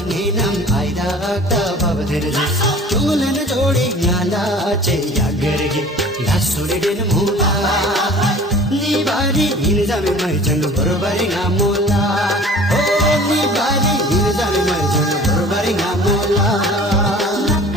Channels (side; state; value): both; normal; correlation 0.45